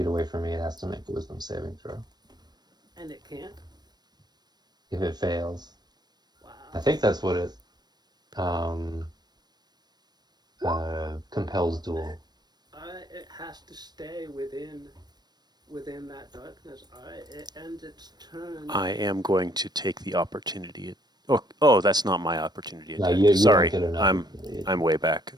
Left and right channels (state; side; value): late; left; 0.20 ms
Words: away from me, it has to make a wisdom saving throw. And it can't. If it fails, Wow. I think that's what it compels duel. It has to stay within that darkness. Alright, it ends its turn. I am going to take the opportunity. Oh, that's not my opportunity No, attack. you Sorry, don't get an I'm opportunity. way back.